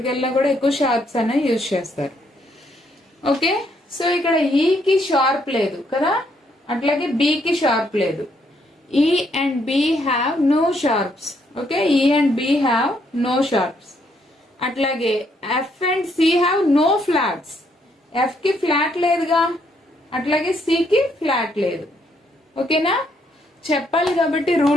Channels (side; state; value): both; normal; correlation 0.72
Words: వెళ్ళినా కూడా ఎక్కువ షార్ప్స్ అనే యూజ్ చేస్తారు. ఓకే, సో ఇక్కడ ఈకి షార్ప్ లేదు కదా, అట్లాగే బికి షార్ప్ లేదు. E and B have no sharps. Okay, E and B have no sharps. అట్లాగే F and C have no flats. F కి ఫ్లాట్ లేదుగా, అట్లాగే సి కి ఫ్లాట్ లేదు. ఓకేనా? చెప్పాలి కాబట్టి,